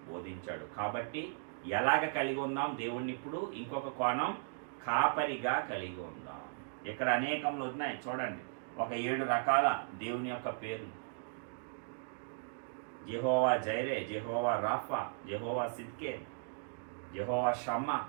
బోధించాడు. కాబట్టి ఎలాగ కలిగి ఉందాం దేవుణ్ణి? ఇప్పుడు ఇంకొక కోణం, కాపరిగా కలిగి ఉందాం. ఇక్కడ అనేకంలో ఉన్నాయి చూడండి, ఒక 7 రకాల దేవుని యొక్క పేర్లు. యెహోవా జైరే, యెహోవా రాఫా, యెహోవా సిద్కే, యెహోవా షమ్మా,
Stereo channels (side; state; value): left; silent; digital silence